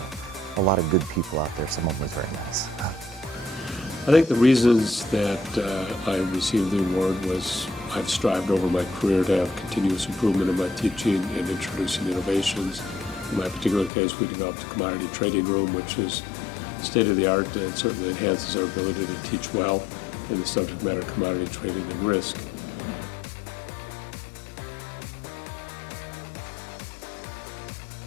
a lot of good people out there. Some of them was very nice. I think the reasons that I received the award was I've strived over my career to have continuous improvement in my teaching and introducing innovations. In my particular case, we developed a commodity trading room, which is state-of-the-art and certainly enhances our ability to teach well in the subject matter of commodity trading and risk. I know there are a lot of great instructors and teachers in our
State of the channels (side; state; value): right; drops out; at 13.9 s